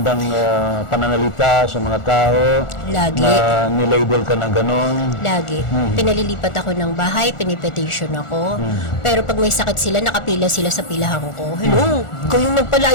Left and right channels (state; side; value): late; right; 1.4 ms